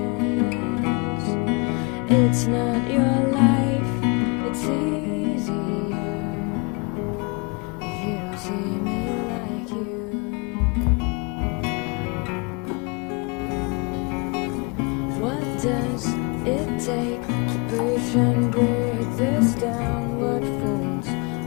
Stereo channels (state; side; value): quieter; right; 31.4 dB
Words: It's not your life, it's easier if you don't see me like you. What does it take to push and break this down? What fools